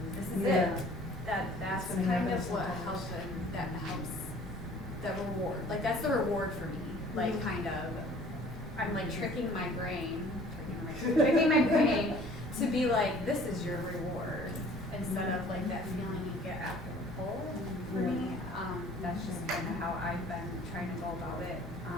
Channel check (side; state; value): both; normal; correlation 0.51